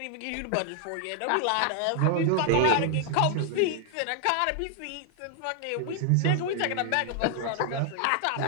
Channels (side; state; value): both; different; correlation 0.00